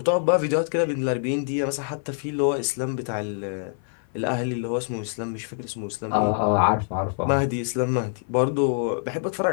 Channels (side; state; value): right; silent; 55 dB below the other